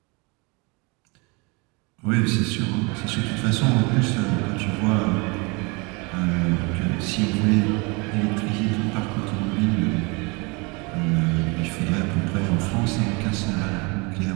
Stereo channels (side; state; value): left; quieter; 28.9 dB